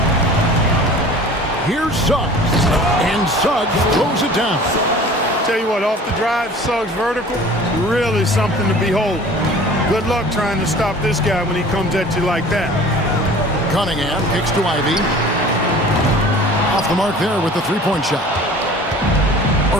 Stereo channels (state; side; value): normal; both; correlation 0.45